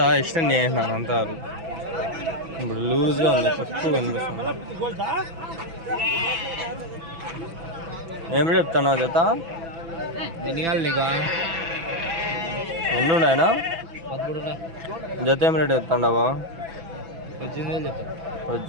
ఇష్టం చేసినారు అంతా ఇప్పుడు లూజ్గా ఉంది, తక్కువ కనిపిస్తుంది. ఏమి చెప్తాను జత? ఎన్ని ఉన్నాయనా జత? ఏం రేట్ చెప్తాండవా?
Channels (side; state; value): left; late; 6.0 ms